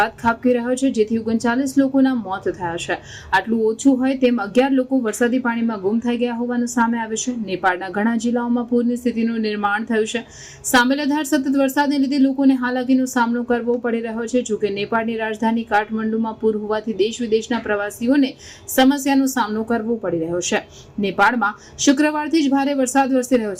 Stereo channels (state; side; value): identical; both; correlation 1.00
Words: ખાબકી રહ્યો છે, જેથી 39 લોકોના મોત થયા છે। આટલું ઓછું હોય તેમ 11 લોકો વરસાદી પાણીમાં ગુમ થઈ ગયા હોવાનું સામે આવ્યું છે। નેપાળના ઘણા જિલ્લાઓમાં પૂરની સ્થિતિનું નિર્માણ થયું છે। સામેલધાર સતત વરસાદને લીધે લોકોને હાલાકીનો સામનો કરવો પડી રહ્યો છે। જોકે નેપાળની રાજધાની કાઠમંડુમાં પૂર હોવાથી દેશ વિદેશના પ્રવાસીઓને સમસ્યાનો સામનો કરવો પડી રહ્યો છે। નેપાળમાં શુક્રવારથી જ ભારે વરસાદ વરસી રહ્યો